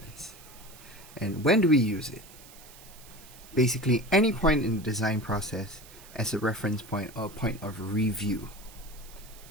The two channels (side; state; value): right; noise; hiss, 20 dB below the sound